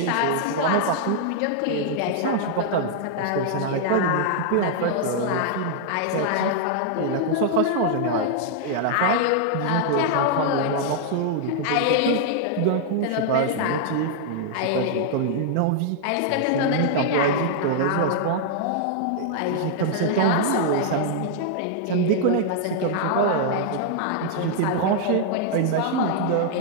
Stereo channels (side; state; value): both; different; correlation -0.01